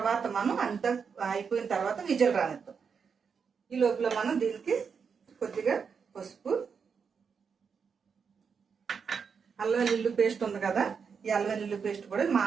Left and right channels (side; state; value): left; quieter; 6.1 dB